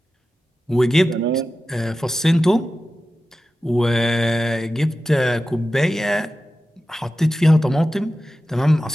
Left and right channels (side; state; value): both; normal; correlation 0.93